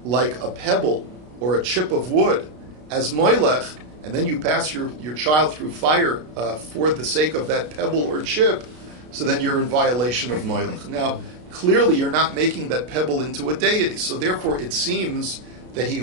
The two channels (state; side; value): late; left; 33 ms